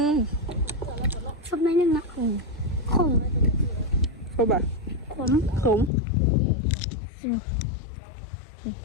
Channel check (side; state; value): right; drops out; at 5.9 s